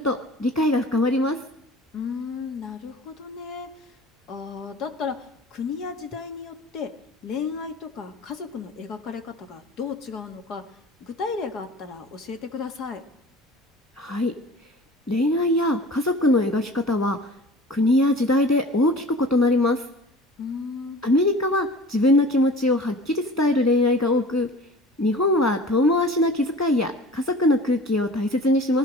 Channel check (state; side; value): normal; both; correlation 0.42